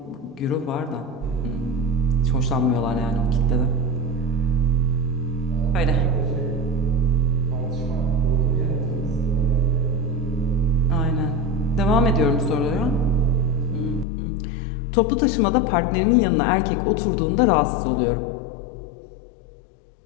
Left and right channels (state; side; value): drops out; right; at 14.1 s